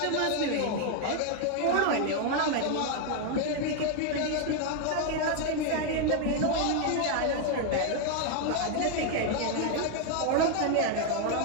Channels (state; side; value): different; both; correlation 0.01